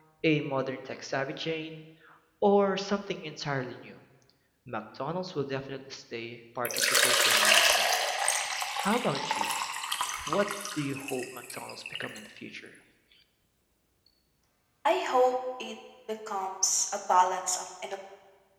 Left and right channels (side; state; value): both; identical; correlation 1.00